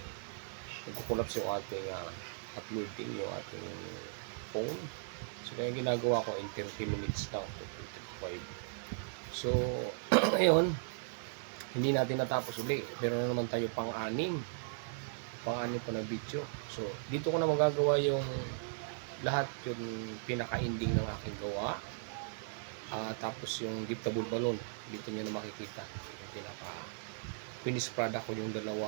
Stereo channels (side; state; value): left; silent; digital silence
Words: nagkukulaps yung ating uploading, yung ating phone. So, kaya ginagawa ko in 30 minutes lang, 55. So, ngayon, hindi natin natapos uli. Meron na naman tayo pang-anim pa na video. So, dito ko na magagawa yung lahat yung pinaka-ending ng aking gawa. Tapos yung giftable balloon, dito nyo na makikita. Yung pinaka-finished product ko yung